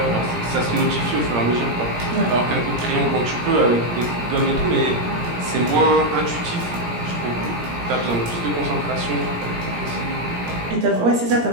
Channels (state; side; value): late; left; 17 ms